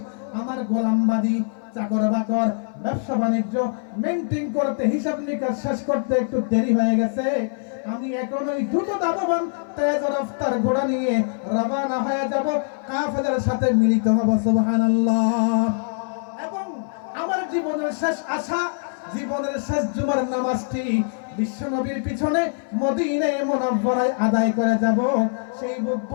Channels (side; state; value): right; silent; 57 dB below the other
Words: আমার গোলামবাদী চাকর বাকর ব্যবসা বাণিজ্য মেইনটেইন করতে, হিসাব নিকাশ শেষ করতে একটু দেরি হয়ে গেছে। আমি এখন ওই দ্রুত দামবান তেজ রফতার ঘোড়া নিয়ে রওনা হয়ে যাব, কাফেরদের সাথে মিলিত হব। সুবহানাল্লাহ। এবং আমার জীবনের শেষ আশা, জীবনের শেষ জুমার নামাজটি বিশ্বনবীর পিছনে মদিনায়ে মুনাওয়ারায় আদায় করে যাব, সেই